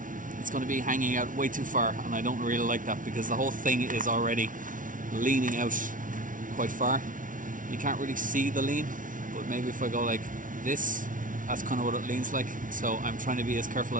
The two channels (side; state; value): left; late; 0.38 ms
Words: it's going to be hanging out way too far, and I don't really like that because the whole thing is already leaning out quite far. You can't really see the lean, but maybe if I go like this, that's kind of what it leans like. So I'm trying to be as careful